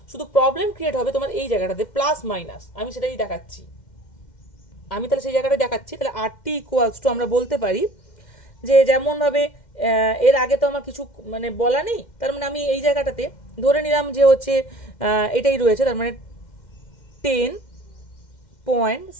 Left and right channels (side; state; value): right; late; 2.1 ms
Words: শুধু প্রবলেম ক্রিয়েট হবে তোমার এই জায়গাটাতে প্লাস মাইনাস, আমি সেটাই দেখাচ্ছি। আমি তাহলে সেই জায়গাটা দেখাচ্ছি, তাহলে RT ইকুয়ালস টু আমরা বলতে পারি যে যেমনভাবে এর আগে তো আমার কিছু মানে বলা নেই, তার মানে আমি এই জায়গাটাতে ধরে নিলাম যে হচ্ছে এটাই রয়েছে, তার মানে